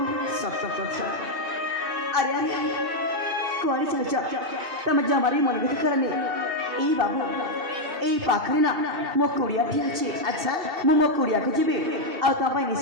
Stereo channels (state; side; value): late; left; 2.6 ms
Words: सत कथा अरे अरे कुआरी चल तम जमारी मन भी करनी ए बाबू ए पाखरे ना मो कुड़िया ठी अछि अच्छा मो कुड़िया को जीबे आ तम पाई